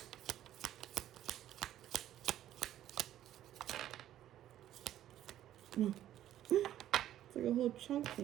It's like a whole chunk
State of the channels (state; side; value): quieter; left; 12.2 dB